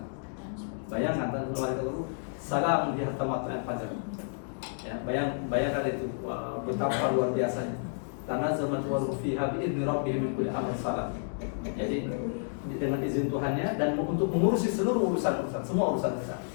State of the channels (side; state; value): right; silent; digital silence